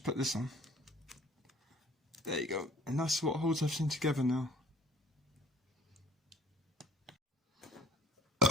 put this on. There you go. And that's what holds everything together now.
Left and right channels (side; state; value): both; normal; correlation 0.53